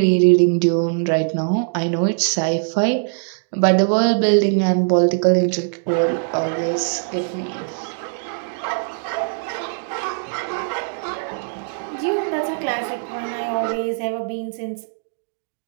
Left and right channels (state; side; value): silent; left; digital silence